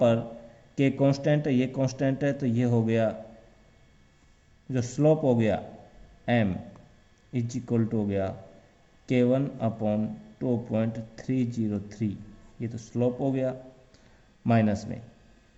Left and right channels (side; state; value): both; identical; correlation 1.00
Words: पर k कांस्टेंट है, ये कांस्टेंट है, तो ये हो गया जो स्लोप हो गया m इज इक्वल टू हो गया K1 अपॉन 2.303। ये तो स्लोप हो गया माइनस